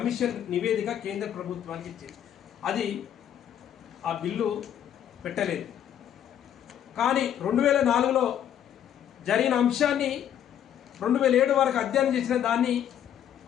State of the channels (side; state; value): right; quieter; 10.0 dB